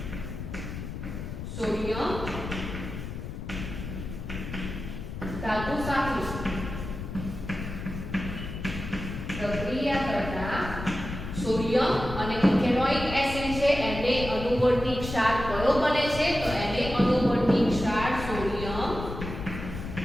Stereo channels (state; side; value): noise; left; rumble, 8 dB below the sound